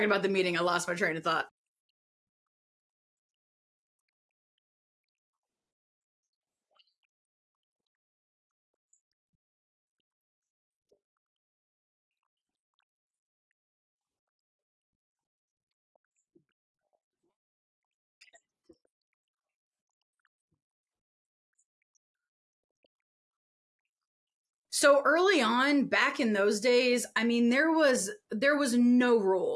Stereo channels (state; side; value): identical; both; correlation 1.00